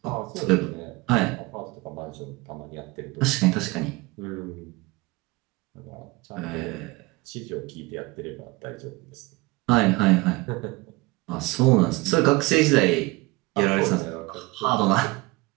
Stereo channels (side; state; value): left; quieter; 23.0 dB